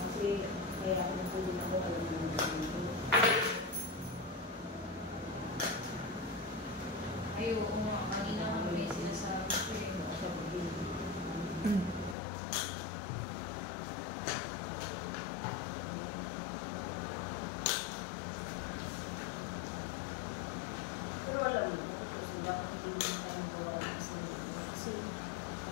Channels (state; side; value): drops out; right; at 12.2 s